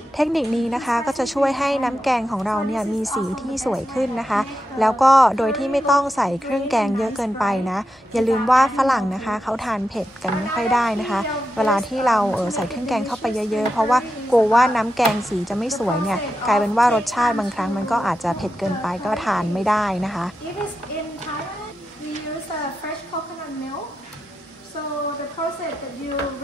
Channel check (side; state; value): both; normal; correlation 0.88